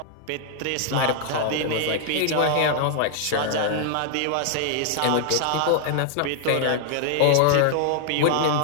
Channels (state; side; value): different; both; correlation -0.01